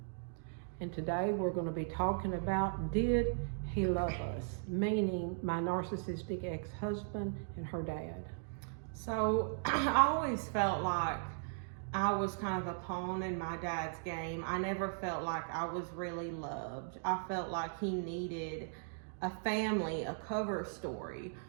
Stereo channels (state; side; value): silent; left; digital silence